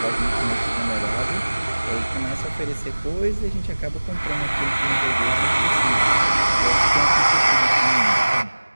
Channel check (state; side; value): inverted; both; correlation -1.00